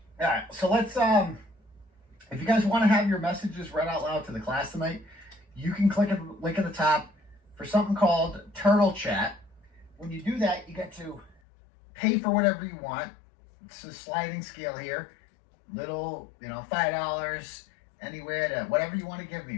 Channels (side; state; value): right; drops out; at 11.4 s